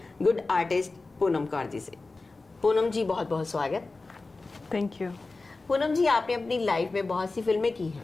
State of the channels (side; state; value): right; quieter; 3.6 dB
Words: गुड आर्टिस्ट पूनम कौर जी से। पूनम जी, बहुत बहुत स्वागत। Thank you. पूनम जी, आपने अपनी लाइफ में बहुत सी फिल्में की